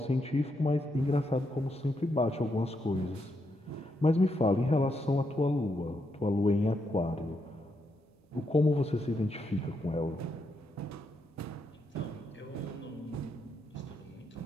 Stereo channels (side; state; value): both; normal; correlation 0.80